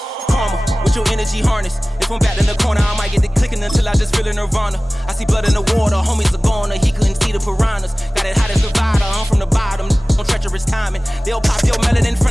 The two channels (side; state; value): both; normal; correlation 0.98